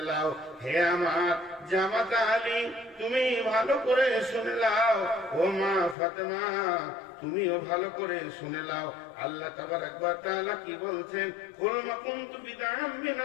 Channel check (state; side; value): drops out; right; at 6.0 s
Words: লাও, হে আমার জামাতা আলী, তুমি ভালো করে শুনে লাও। ও মা ফাতেমা, তুমিও ভালো করে শুনে লাও। আল্লাহ তাবারাক ওয়া তাআলা কি বলছেন? কুল মা কুনতু বিদআম